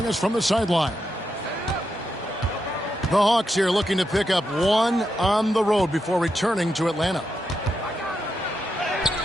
us from the sideline. The Hawks here looking to pick up one on the road before returning to Atlanta.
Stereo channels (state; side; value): normal; both; correlation 0.84